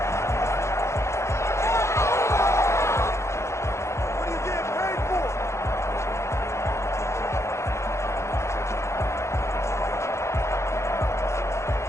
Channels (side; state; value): right; late; 0.13 ms